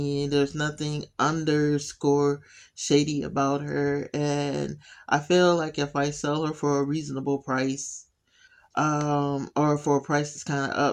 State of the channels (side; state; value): both; identical; correlation 1.00